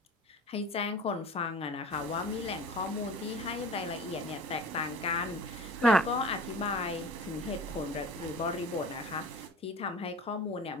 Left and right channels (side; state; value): both; normal; correlation 0.40